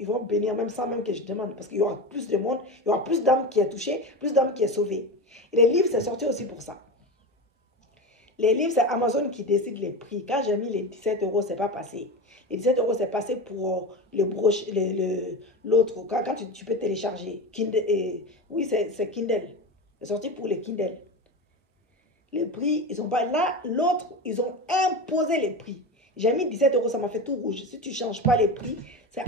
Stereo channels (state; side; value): normal; both; correlation 0.23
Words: vont bénir même sans même que je demande. Parce qu'il y aura plus de monde, il y aura plus d'âmes qui est touchées, plus d'âmes qui est sauvées. Et les livres, c'est sorti aussi pour ça. Les livres, c'est Amazon qui décide les prix. Quand j'ai mis les 17 euros, c'est pas passé. Les 17 euros, c'est passé pour l'autre. Quand tu peux télécharger. Kindle, oui, c'est Kindle. C'est sorti pour les Kindle. Les prix, ils ont pas. Là, l'autre, ils ont imposé les prix. J'ai mis 17 euros, ça m'a fait tout rouge. Si tu ne changes pas les prix, c'est